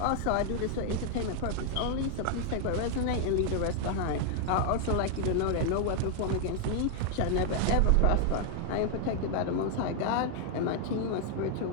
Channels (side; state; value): both; different; correlation 0.00